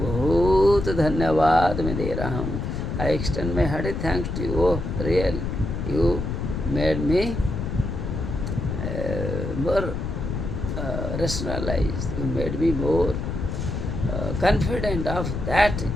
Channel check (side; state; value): left; noise; rumble, 3 dB below the sound